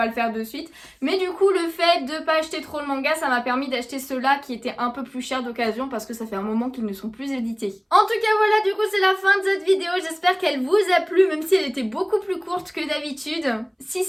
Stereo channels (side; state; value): both; identical; correlation 1.00